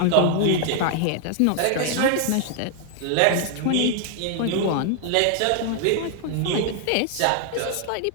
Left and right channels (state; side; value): different; both; correlation 0.00